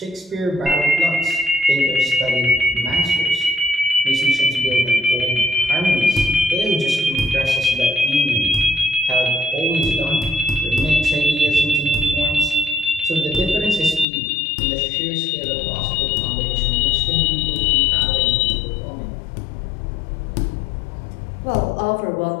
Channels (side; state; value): right; drops out; at 14.1 s